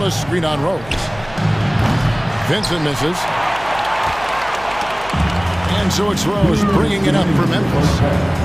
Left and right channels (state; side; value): noise; right; hum, 19 dB below the sound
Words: a screen on Rose. Vincent misses. And so it's Rose bringing it up for Memphis.